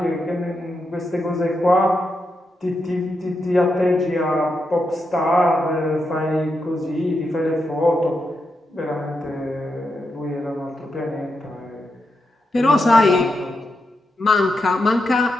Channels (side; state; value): both; normal; correlation 0.85